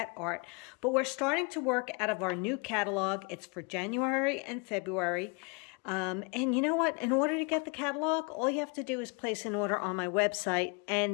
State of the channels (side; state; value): right; quieter; 32.5 dB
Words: art, but we're starting to work out of our new catalog. It's for January and February. And you know what? In order to get the catalog, all you have to do is place an order on my website